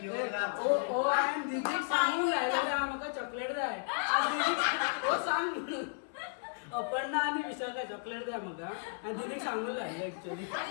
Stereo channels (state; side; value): silent; right; 55 dB below the other